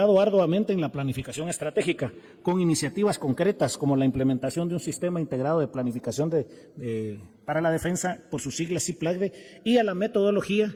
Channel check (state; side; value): identical; both; correlation 1.00